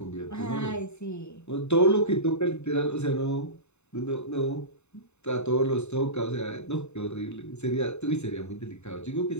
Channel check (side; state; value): right; late; 0.82 ms